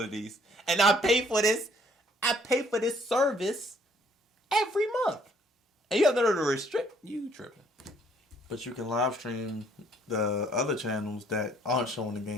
And I pay for this service every month. And you have no to restrict... You tripping. But you can live stream the other channels that aren't showing the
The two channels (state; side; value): normal; both; correlation 0.63